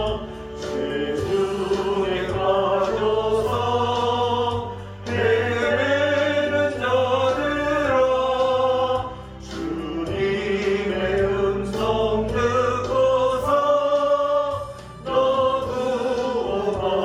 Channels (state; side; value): identical; both; correlation 1.00